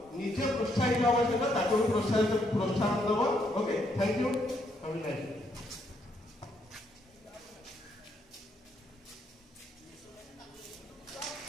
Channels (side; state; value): both; normal; correlation 0.74